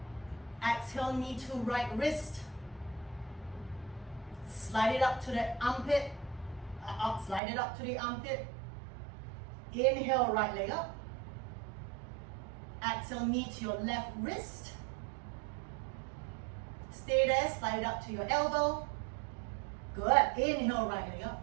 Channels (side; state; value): left; drops out; at 7.4 s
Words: Exhale, knee to right wrist. Slide it up to the armpit. Slide it up to the armpit. Inhale, right leg up. Exhale, knee to your left wrist. Stay there, slide it up to your elbow. Good. Inhale, right leg up.